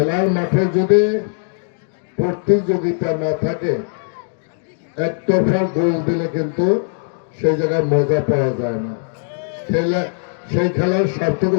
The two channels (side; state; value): right; silent; digital silence